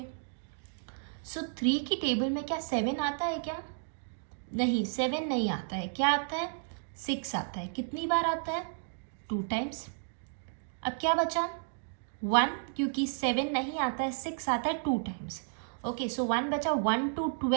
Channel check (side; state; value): left; silent; digital silence